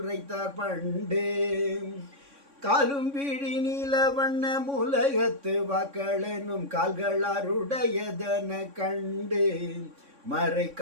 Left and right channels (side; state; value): left; late; 3.6 ms